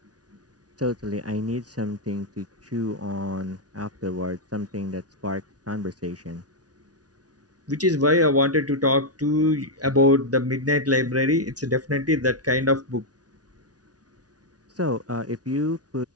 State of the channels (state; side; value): late; left; 0.68 ms